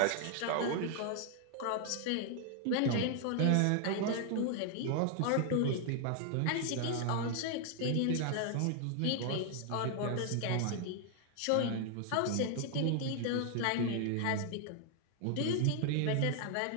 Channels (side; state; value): both; different; correlation 0.00